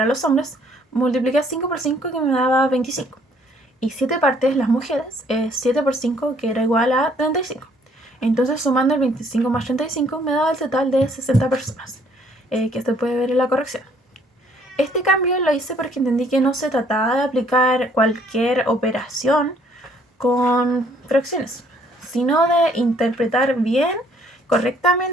los hombres, multipliqué 5 por 5, que me daba 25. Y 7 partes, las mujeres, 7 por 5, que era igual a 35. Entonces, sumando el 25 más 35, me daba el total de 60 personas, que se puede ver en la corrección. Este cambio lo hice porque entendí que no se trataba de aplicar cualquier operación con fracciones, sino de interpretar bien,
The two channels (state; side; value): normal; both; correlation 0.63